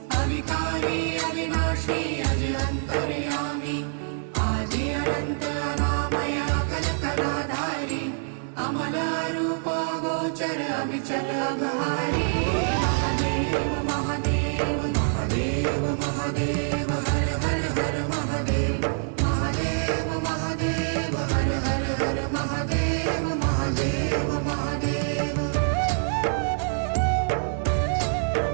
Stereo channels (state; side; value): silent; left; 61 dB below the other